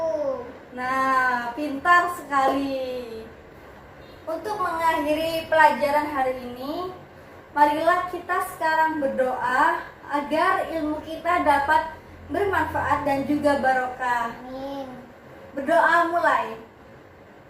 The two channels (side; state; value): both; identical; correlation 1.00